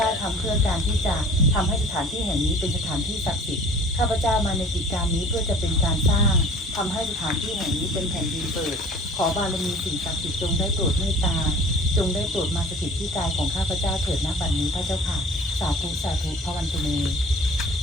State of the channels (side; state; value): both; normal; correlation 0.46